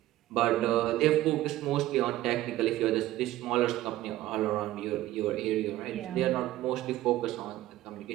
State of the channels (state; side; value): quieter; left; 15.3 dB